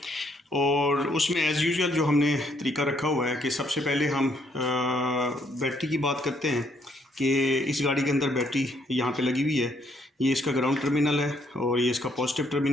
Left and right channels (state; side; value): normal; both; correlation 0.70